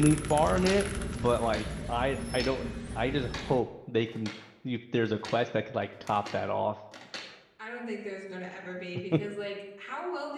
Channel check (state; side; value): identical; both; correlation 1.00